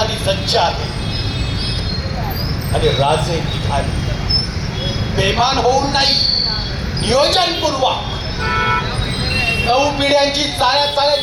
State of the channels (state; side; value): identical; both; correlation 1.00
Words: सज्ज आहे. आणि राजे निघाले बेमान होऊन नाही, नियोजनपूर्वक. 9 पिढ्यांची